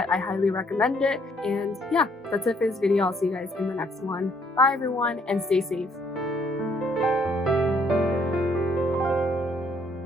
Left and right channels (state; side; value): normal; both; correlation 0.67